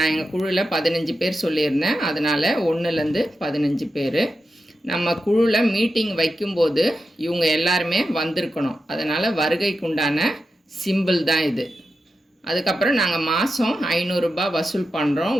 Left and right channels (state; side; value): normal; both; correlation 0.90